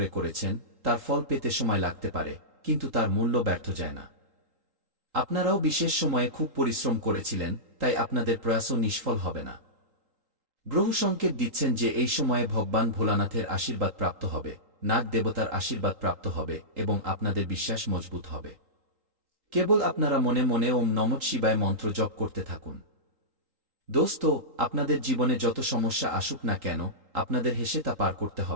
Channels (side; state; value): left; late; 3.8 ms